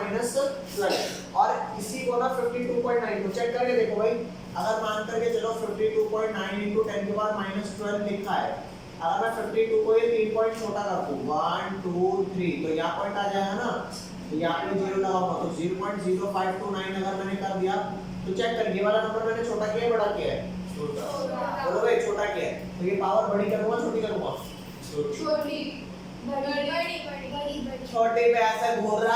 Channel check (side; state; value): both; identical; correlation 1.00